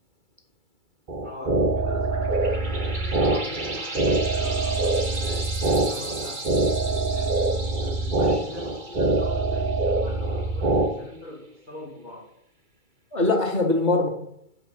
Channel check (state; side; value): late; left; 2.3 ms